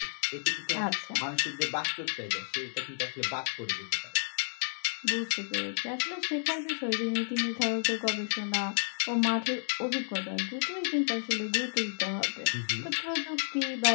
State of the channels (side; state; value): right; silent; digital silence